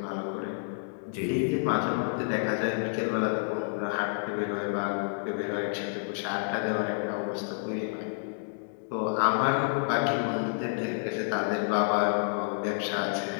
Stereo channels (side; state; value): right; silent; digital silence